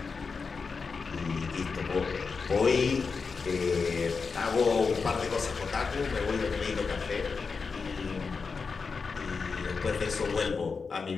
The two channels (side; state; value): right; quieter; 5.0 dB